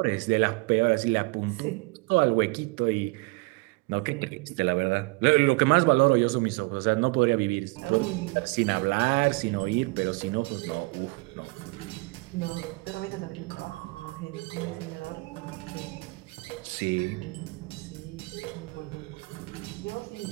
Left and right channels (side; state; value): left; quieter; 26.8 dB